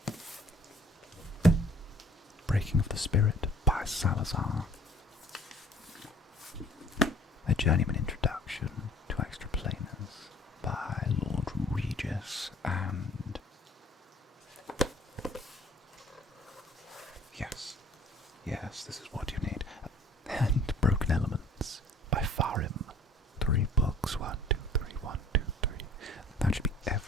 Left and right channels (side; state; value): both; normal; correlation 0.54